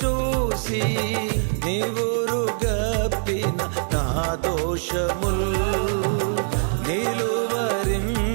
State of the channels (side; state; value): left; silent; digital silence